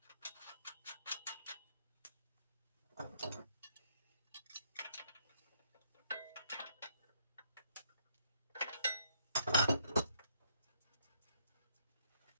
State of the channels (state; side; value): inverted; both; correlation -0.71